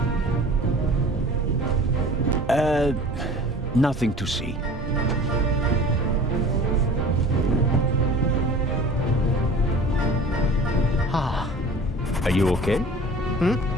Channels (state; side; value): normal; both; correlation 0.43